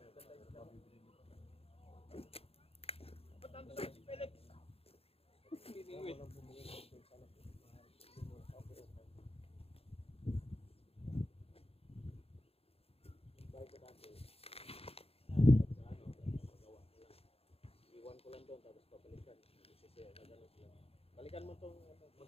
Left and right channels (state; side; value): late; right; 0.28 ms